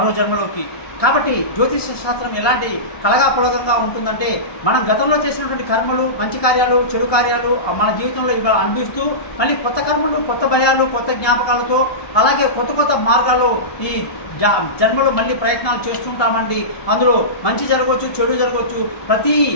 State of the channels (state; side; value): late; right; 1.2 ms